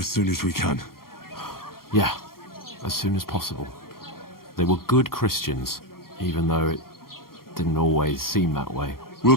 soon as we can. Yeah, as soon as possible. They were good Christians, even though it didn't always seem that way. We'll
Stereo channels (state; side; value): late; right; 0.93 ms